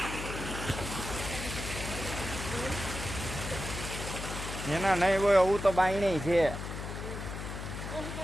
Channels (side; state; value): left; noise; hum, 7 dB below the sound